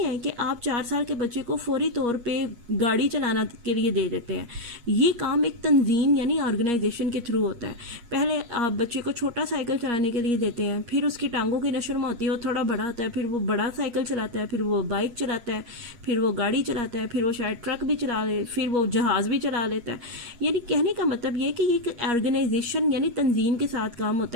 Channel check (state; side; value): late; left; 8.4 ms